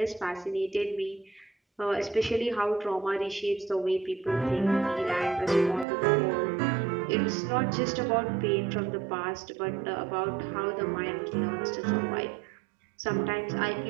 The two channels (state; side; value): drops out; left; at 5.9 s